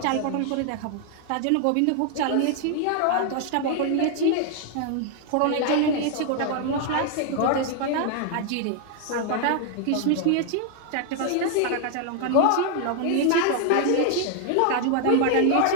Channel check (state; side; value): different; both; correlation 0.00